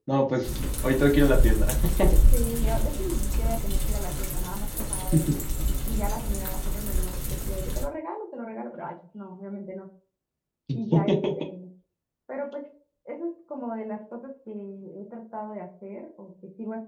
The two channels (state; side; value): identical; both; correlation 1.00